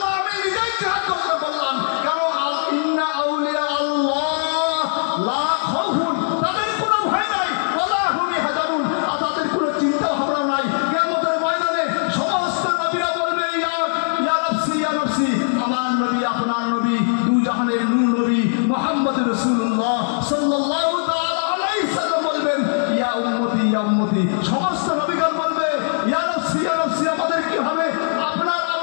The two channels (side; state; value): right; silent; digital silence